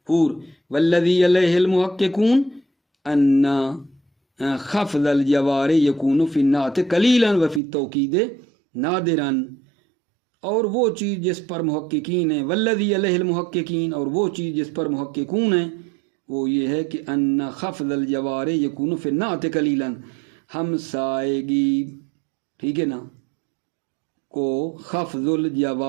والذی علیہ المحققون ان خفض الجوار یکون فی النعت قلیلا و فی التوکید نادرا، اور وہ چیز جس پر محققین ہیں، والذی علیہ المحققین، اور وہ چیز جس پر محققون ہیں وہ یہ ہے کہ ان خفض الجوار یکون فی النعت قلیلا، ہمسائیگی، ٹھیک ہے نا، کو خفض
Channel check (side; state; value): left; drops out; at 7.6 s